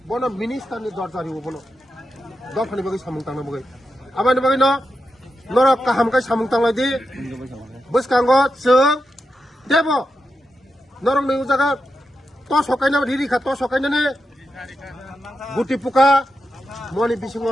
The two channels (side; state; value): both; normal; correlation 0.88